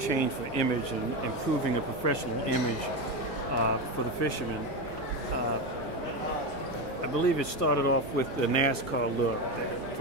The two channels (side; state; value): both; normal; correlation 0.16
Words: for image and improving a professional image for the fishermen. I believe it started off with the NASCAR look,